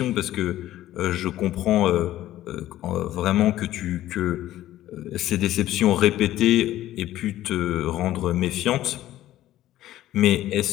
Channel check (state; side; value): quieter; right; 14.0 dB